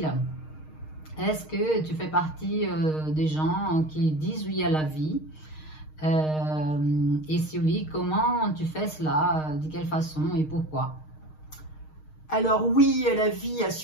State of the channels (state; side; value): late; right; 6.5 ms